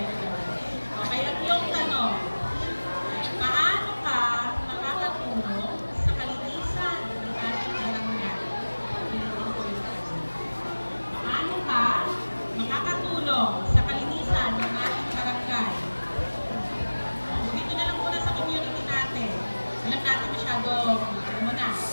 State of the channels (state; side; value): inverted; both; correlation -1.00